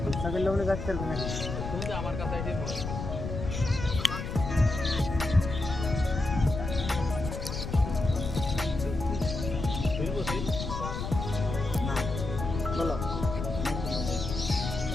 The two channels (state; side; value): noise; left; rumble, 5 dB below the sound